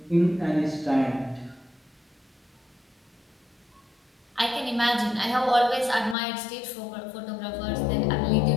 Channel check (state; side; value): drops out; right; at 6.2 s